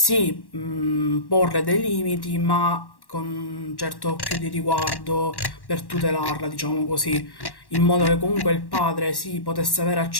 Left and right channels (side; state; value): right; late; 1.1 ms